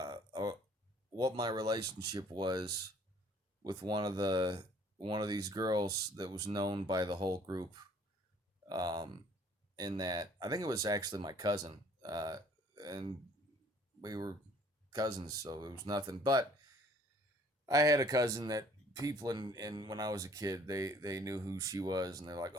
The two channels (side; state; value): both; normal; correlation 0.57